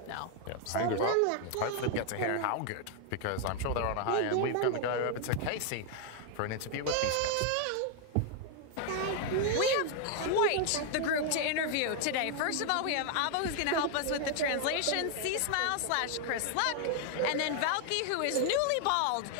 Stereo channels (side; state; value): both; different; correlation 0.00